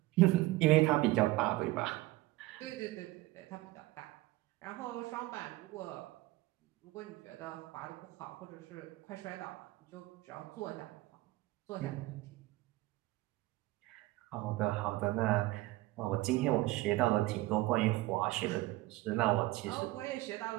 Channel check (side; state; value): left; quieter; 19.0 dB